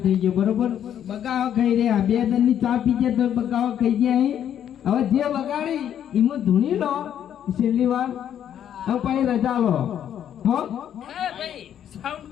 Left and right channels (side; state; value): right; quieter; 9.8 dB